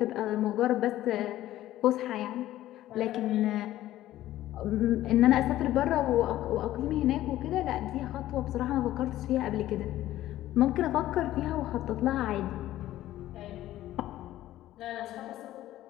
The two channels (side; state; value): right; quieter; 14.2 dB